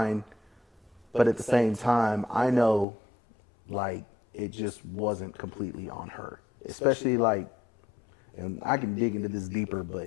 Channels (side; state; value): right; drops out; at 2.9 s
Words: But at the same time, I know, like, it just wasn't completely on her. Especially, like, and I can dig into this deeper,